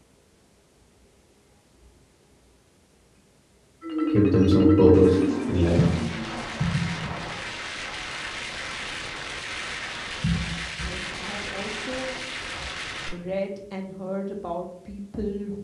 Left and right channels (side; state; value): both; identical; correlation 1.00